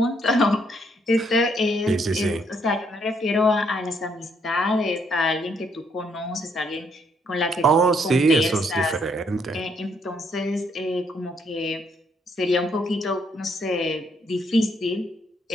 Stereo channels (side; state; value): both; normal; correlation 0.71